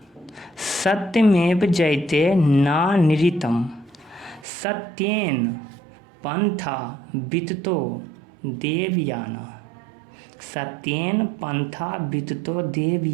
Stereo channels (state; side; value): drops out; left; at 4.5 s